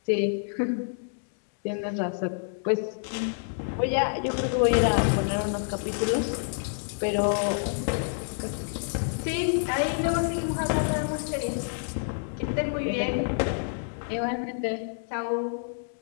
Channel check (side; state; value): right; silent; digital silence